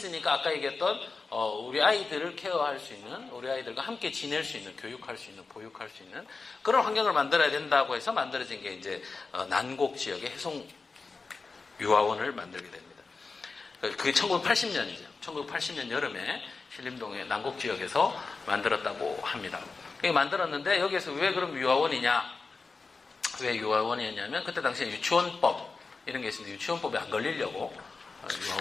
아까 얘기했던 우리 아이들을 케어할 수 있는, 우리 아이들과 함께 지낼 수 있는, 교육할 수 있는, 보육할 수 있는 그런 환경을 만들어야 된다고 해서 만들어진 게 이제 난곡 지역의 해송 유아원을 만들게 됩니다. 그게 1980년이죠. 1980년 여름에 신림동의 난곡 지역에서 만들었다고 합니다. 만들었는데 여기에서 왜 그럼 유아원이냐? 왜 유아원이었냐면 그때 당시에 유치원법 이런 게 있었는데 유치원법에 안 걸리려고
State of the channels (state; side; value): quieter; right; 4.2 dB